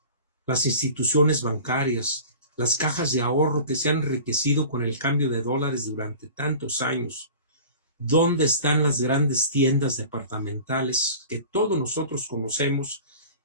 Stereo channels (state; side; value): inverted; both; correlation -0.40